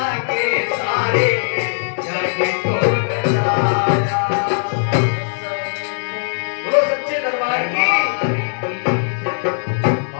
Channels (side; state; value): right; silent; digital silence